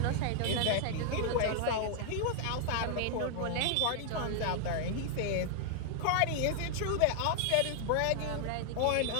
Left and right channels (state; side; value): different; both; correlation 0.00